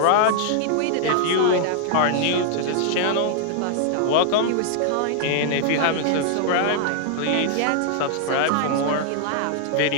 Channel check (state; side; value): different; both; correlation 0.00